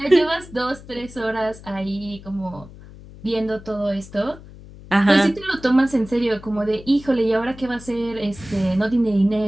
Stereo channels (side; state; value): left; noise; hum, 18 dB below the sound